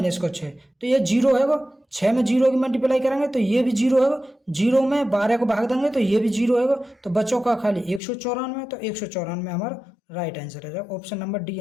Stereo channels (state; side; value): drops out; right; at 8.0 s